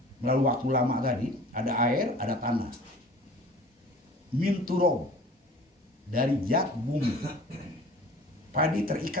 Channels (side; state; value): both; normal; correlation 0.45